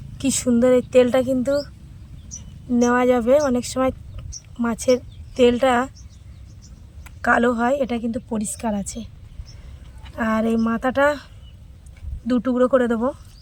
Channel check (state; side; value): identical; both; correlation 1.00